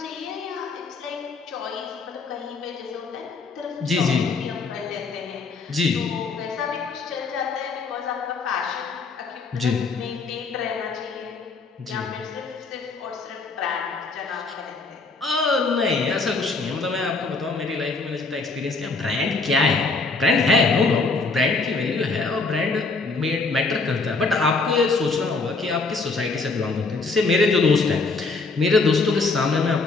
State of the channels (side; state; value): right; quieter; 4.0 dB